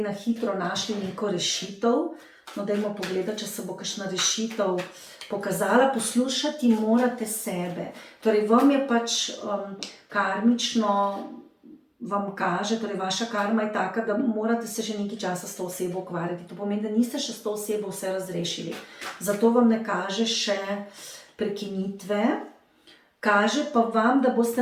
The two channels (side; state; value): both; identical; correlation 1.00